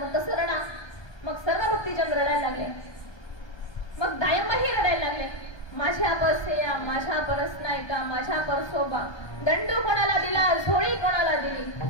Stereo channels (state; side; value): late; right; 1.2 ms